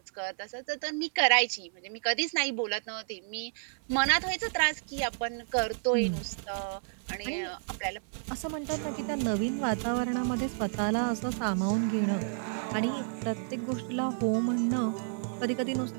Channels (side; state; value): left; silent; 57 dB below the other